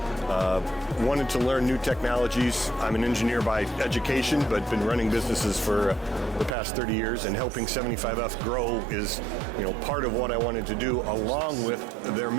Wanted to learn new technologies. I'm an engineer by education, but been running businesses for the past 30 years, and helping 75F grow is, part of what I wanted to do, along with their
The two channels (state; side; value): drops out; left; at 6.6 s